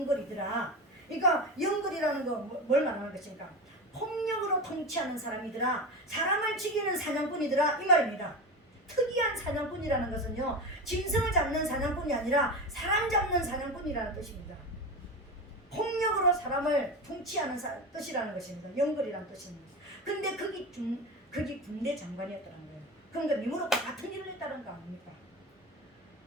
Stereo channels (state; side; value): normal; both; correlation 0.23